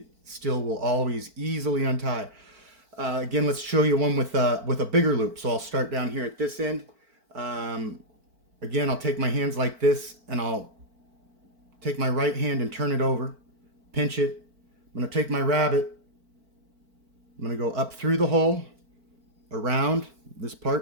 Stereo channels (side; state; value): left; late; 4.5 ms